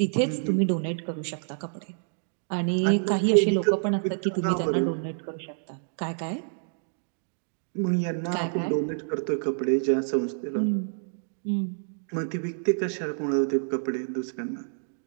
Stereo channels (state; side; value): silent; left; digital silence